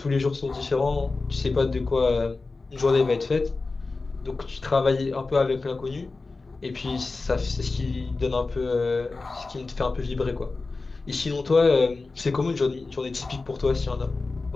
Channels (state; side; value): quieter; right; 3.7 dB